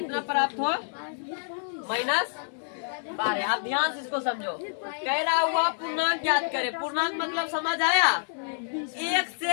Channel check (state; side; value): silent; right; digital silence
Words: प्राप्त हो -12। आप ध्यान से इसको समझो। कह रहा हुआ पूर्णांक ज्ञात करे, पूर्णांक मतलब समझ आया, 1